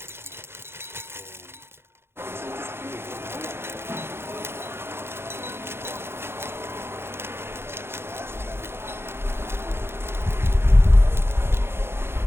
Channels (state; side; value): late; left; 0.11 ms